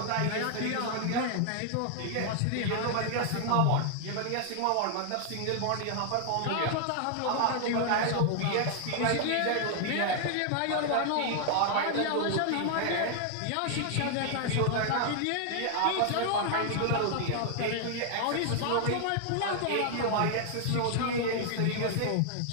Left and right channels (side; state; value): both; different; correlation 0.00